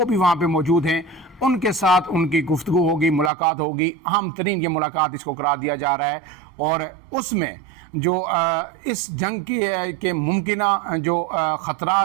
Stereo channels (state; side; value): drops out; left; at 3.3 s